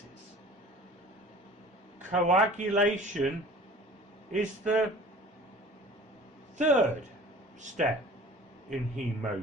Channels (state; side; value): normal; both; correlation 0.44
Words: Coagulation is the third step in